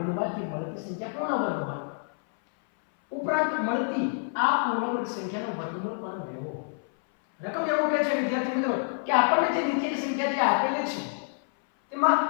મળતી સંખ્યા પૂર્ણ વર્ગ હોય. ઉપરાંત મળતી આ પૂર્ણ વર્ગ સંખ્યાનો વર્ગમૂળ પણ મેળવો. રકમ એવું કહે છે વિદ્યાર્થી મિત્રો કે આપણને જે નીચેની સંખ્યા જે આપેલી છે તેમાં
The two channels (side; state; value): right; silent; 60 dB below the other